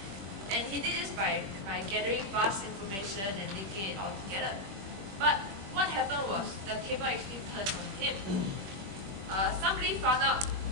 and he did this by gathering vast information and linking it all together. But what happened was the table actually turned on him.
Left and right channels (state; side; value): late; left; 20 ms